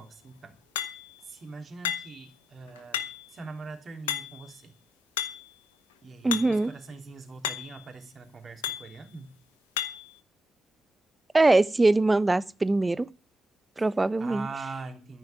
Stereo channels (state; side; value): normal; both; correlation 0.87